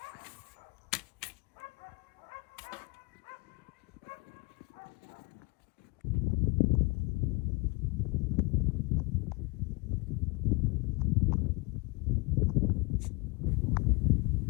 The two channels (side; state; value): right; quieter; 27.1 dB